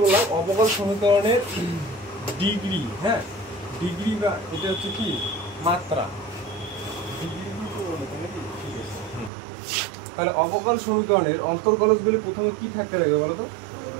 বললাম, অবকল সমীকরণের ডিগ্রি, হ্যাঁ ডিগ্রি বা এটা হচ্ছে কি মাত্রা, তাহলে অবকল সমীকরণের অন্তর্কলজগুলি প্রথমে কি থাকতে লাগবে বলো তো,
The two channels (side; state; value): left; drops out; at 9.3 s